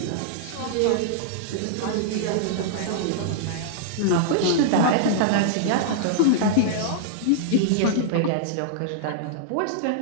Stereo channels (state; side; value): different; both; correlation -0.02